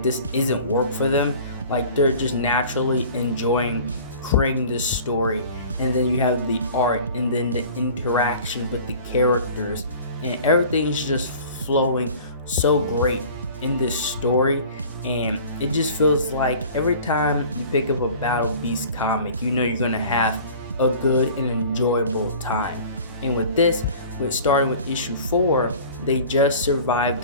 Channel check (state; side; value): inverted; both; correlation -0.44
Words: this isn't work for them, like they're just naturally enjoying creating this story. And then you have the art and then the interaction with the characters, and everything is just flowing so great in this story. And it just feels like every time you pick up a Battle Beast comic, you know you're gonna have a good and enjoyable time. And with this, starting with issue 4, they just survived